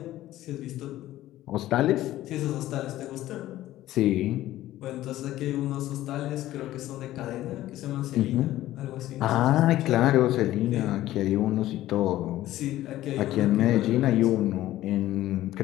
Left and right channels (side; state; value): right; quieter; 14.8 dB